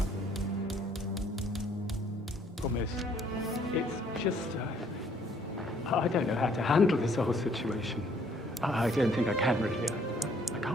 Promise. It's just, I don't know how to handle this whole situation. I don't think I can really. I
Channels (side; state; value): both; normal; correlation 0.62